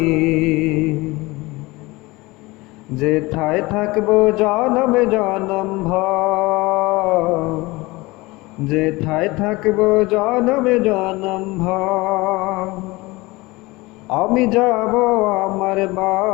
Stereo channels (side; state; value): right; quieter; 22.2 dB